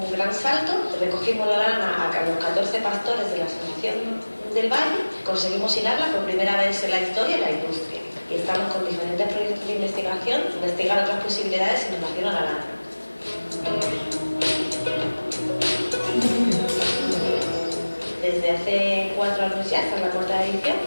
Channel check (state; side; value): inverted; both; correlation -1.00